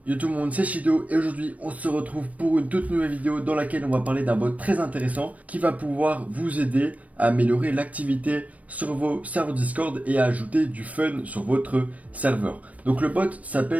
Yo tout le monde, c'est Shido et aujourd'hui on se retrouve pour une toute nouvelle vidéo dans laquelle on va parler d'un bot très intéressant qui va pouvoir vous aider à améliorer l'activité sur vos serveurs Discord et à ajouter du fun sur votre serveur. Donc le bot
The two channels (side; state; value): left; late; 0.069 ms